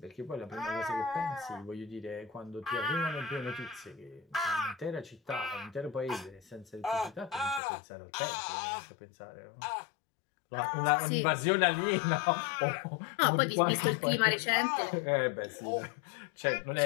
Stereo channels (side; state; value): right; drops out; at 7.6 s